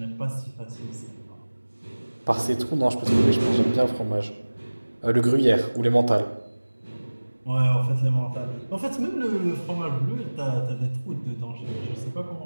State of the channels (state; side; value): inverted; both; correlation -1.00